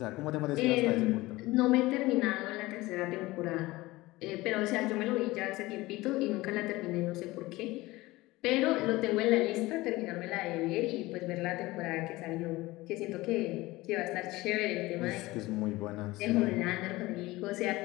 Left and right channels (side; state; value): right; quieter; 19.7 dB